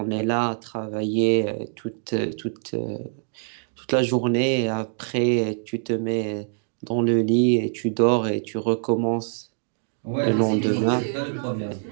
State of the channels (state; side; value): silent; left; digital silence